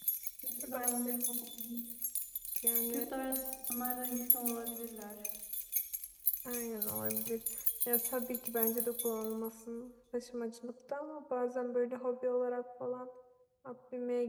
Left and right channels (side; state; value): both; identical; correlation 1.00